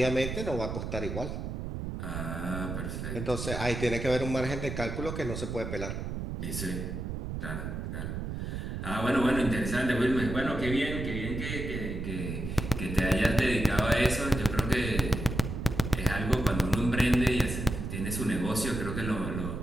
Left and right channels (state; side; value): noise; right; rumble, 5 dB below the sound